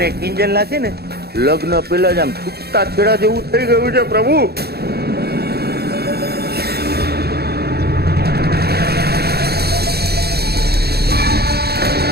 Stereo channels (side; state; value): left; late; 0.46 ms